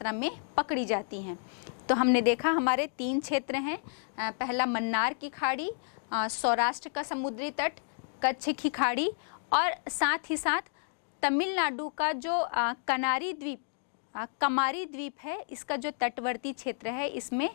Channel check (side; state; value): right; silent; digital silence